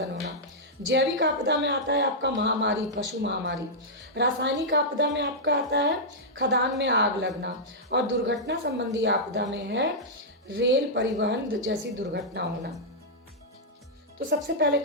होना। जैविक आपदा में आता है आपका महामारी, पशु महामारी। रासायनिक आपदा में आपका आता है खदान में आग लगना। और दुर्घटना संबंधी आपदा में है रेल परिवहन जैसी दुर्घटना होना। तो सबसे पहले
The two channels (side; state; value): both; normal; correlation -0.09